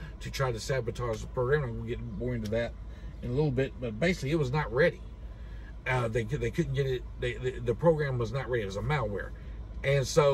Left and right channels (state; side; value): identical; both; correlation 1.00